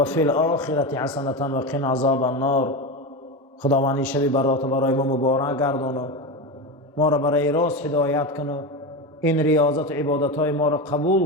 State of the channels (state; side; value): normal; both; correlation 0.19